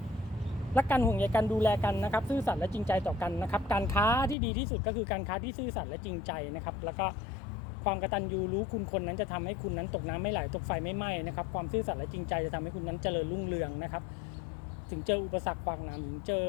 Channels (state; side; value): drops out; right; at 4.4 s